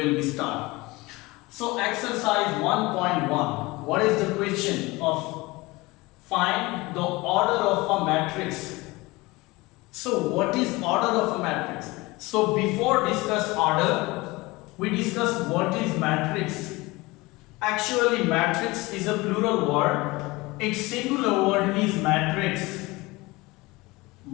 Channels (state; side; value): quieter; right; 22.3 dB